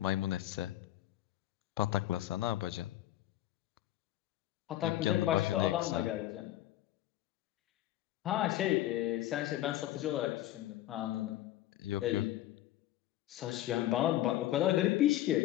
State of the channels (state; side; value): quieter; right; 14.3 dB